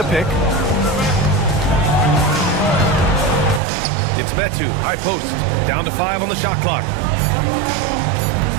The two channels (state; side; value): drops out; left; at 3.6 s